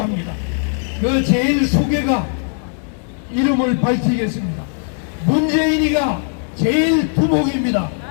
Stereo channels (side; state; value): right; silent; 58 dB below the other